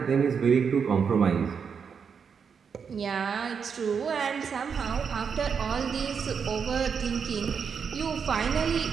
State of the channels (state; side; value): quieter; left; 6.4 dB